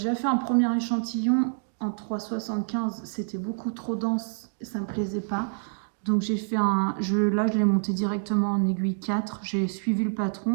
fait un premier échantillon en 3,75. C'était beaucoup trop dense et ça me plaisait pas. Donc j'ai fait là je l'ai monté directement en aiguille 4, j'ai suivi le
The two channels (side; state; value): left; silent; digital silence